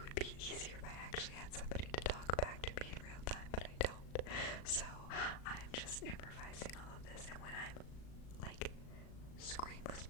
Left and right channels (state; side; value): late; right; 37 ms